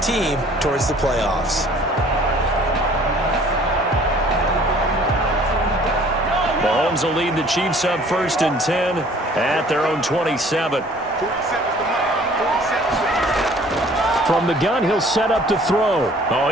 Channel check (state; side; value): normal; both; correlation 0.54